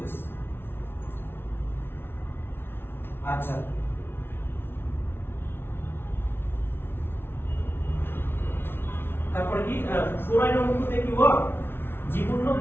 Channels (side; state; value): right; late; 0.11 ms